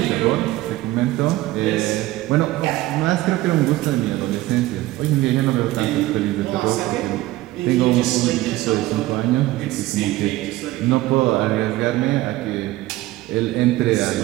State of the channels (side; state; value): left; quieter; 17.3 dB